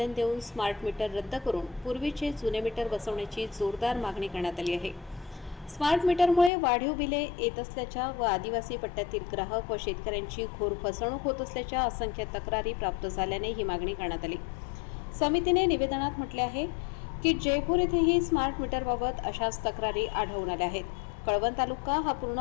देऊन स्मार्ट मीटर रद्द करून पूर्वीचे जुने मीटर बसवण्याची जोरदार मागणी करण्यात आली आहे. स्मार्ट मीटरमुळे वाढीव बिले येत असल्याच्या व आदिवासी पट्ट्यातील ग्राहक व शेतकऱ्यांची घोर फसवणूक होत असल्याच्या असंख्य तक्रारी प्राप्त झाल्याने ही मागणी करण्यात आली. समितीने निवेदनात म्हटले आहे की जयपूर येथेही स्मार्ट मीटरबाबत अशाच तक्रारी आढळून आल्या आहेत. कळवण तालुका हा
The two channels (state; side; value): drops out; right; at 6.5 s